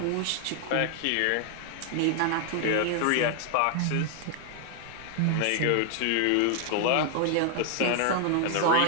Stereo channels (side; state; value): both; different; correlation 0.00